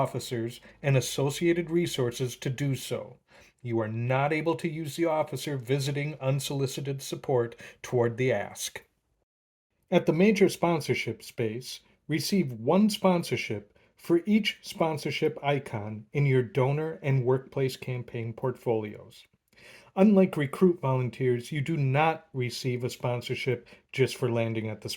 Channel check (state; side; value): identical; both; correlation 1.00